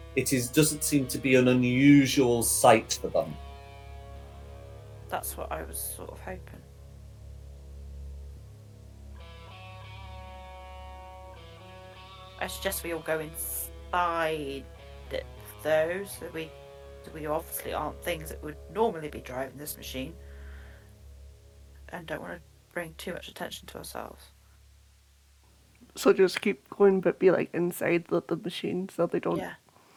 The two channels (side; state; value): both; identical; correlation 1.00